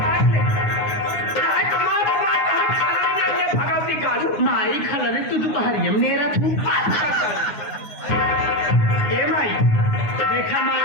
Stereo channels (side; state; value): right; late; 9.8 ms